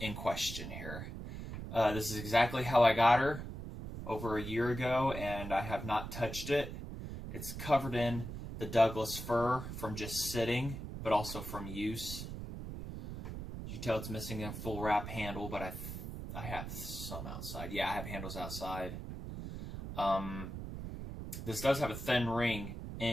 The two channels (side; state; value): right; noise; rumble, 8 dB below the sound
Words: in question here. This is exactly how I got her over a year ago, and I have not touched it. It's covered in the Douglas fir from just sitting, but also from use. You tell it's missing a full wrap handle, but I have some outside. Yeah, I have handles outside. This does have a thin ring